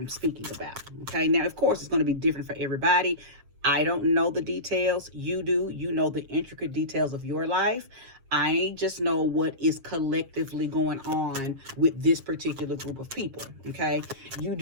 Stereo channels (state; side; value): late; left; 7.5 ms